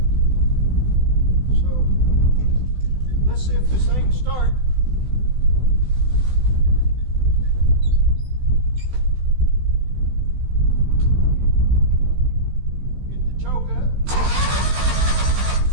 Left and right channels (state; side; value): late; left; 16 ms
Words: So let's see if this thing can start. Get the choke up.